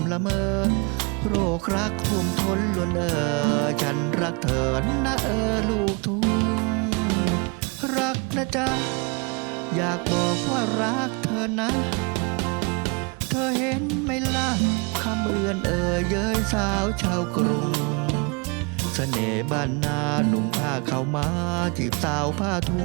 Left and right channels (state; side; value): quieter; left; 31.4 dB